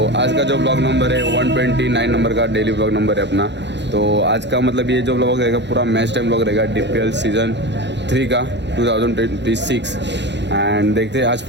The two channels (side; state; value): left; late; 0.51 ms